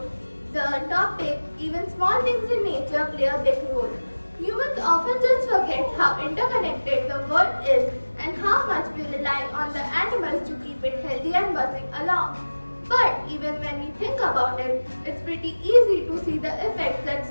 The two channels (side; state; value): both; inverted; correlation -1.00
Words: the topic even small things in nature play a big role. Humans often just forget how interconnected the world is and how much we rely on the animals to keep it healthy and buzzing along. But even when we think about it, it's pretty easy to see the effects that